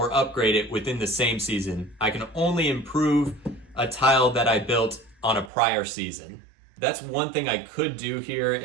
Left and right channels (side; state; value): left; drops out; at 5.5 s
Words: upgrade it within the same season. I can only improve a tile that I built on a prior season. That's one thing I could do here